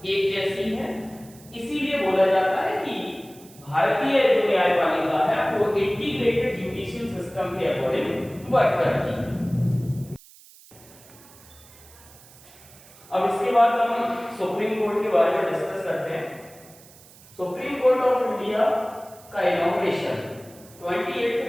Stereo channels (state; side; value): noise; right; hiss, 23 dB below the sound